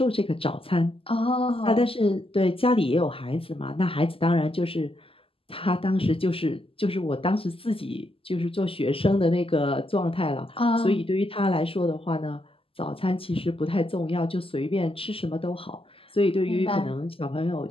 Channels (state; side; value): late; right; 0.26 ms